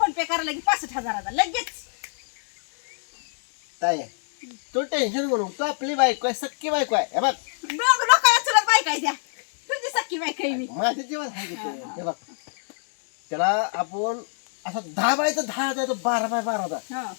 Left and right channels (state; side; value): silent; right; 61 dB below the other